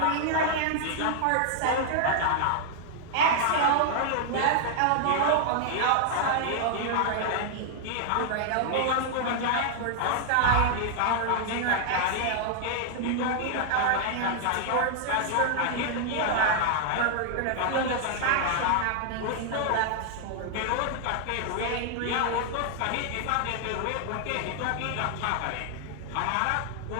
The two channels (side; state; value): both; different; correlation 0.00